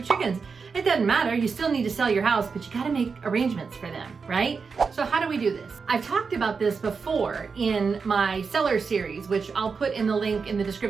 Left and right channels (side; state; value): left; quieter; 5.2 dB